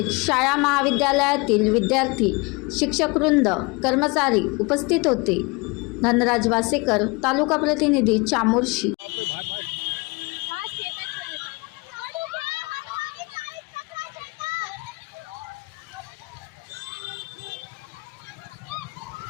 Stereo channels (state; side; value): quieter; right; 27.3 dB